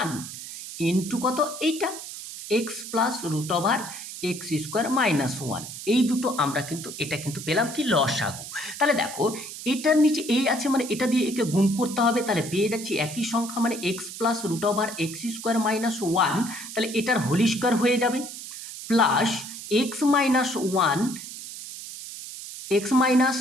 1 into কত, এইটা X plus root over x square minus 1, এই দুটো আমরা কিন্তু এটা কিন্তু পেলাম কি লসাগু। তাহলে দেখো এটার নিচে এই আছে, মানে এটা দিয়ে একে গুণ করতে হবে, তাহলে পেয়ে যাচ্ছি একই সংখ্যা মানে X plus root over x square minus 1, তাহলে এটার হোল স্কোয়ার হয়ে যাবে, plus X minus 1 X minus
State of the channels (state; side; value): noise; right; hiss, 11 dB below the sound